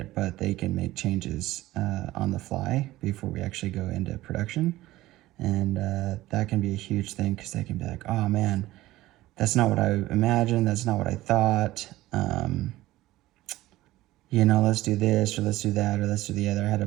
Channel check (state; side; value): quieter; left; 16.7 dB